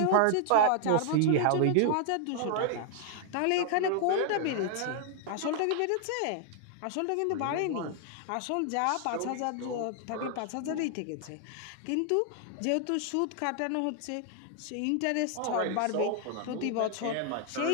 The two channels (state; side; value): different; both; correlation 0.00